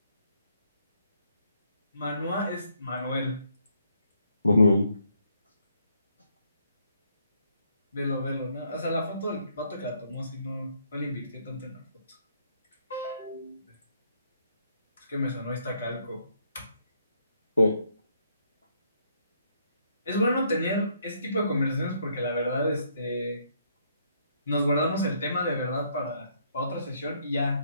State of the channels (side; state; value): both; inverted; correlation -0.71